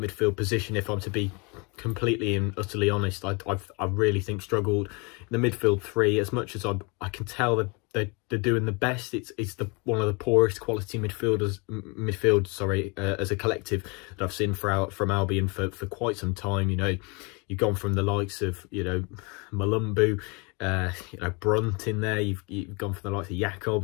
position, if I'm to be completely and utterly honest, I really think struggled. In the midfield three, as much as I can tell that they're doing the best, it's one of the poorest quality midfield as a collective that I've seen from Albion for quite some time. You've gone from the likes of Malumbu, Brunt in there. You've gone from the likes of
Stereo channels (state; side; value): quieter; right; 30.3 dB